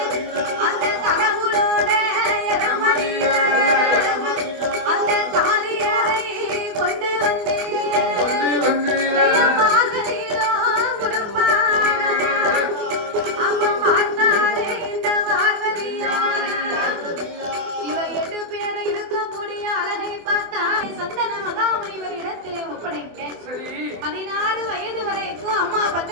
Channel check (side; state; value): left; late; 24 ms